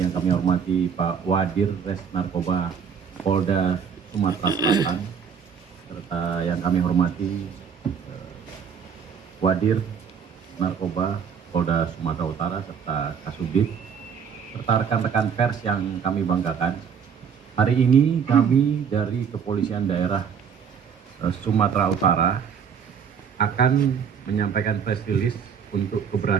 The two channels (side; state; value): left; quieter; 7.1 dB